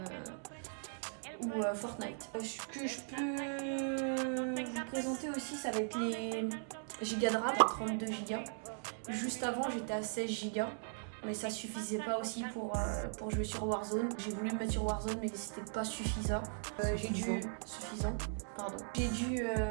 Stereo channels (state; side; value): silent; left; digital silence